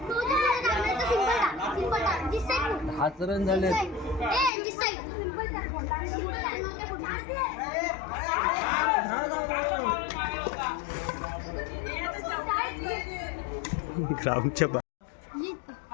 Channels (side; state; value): right; drops out; at 4.5 s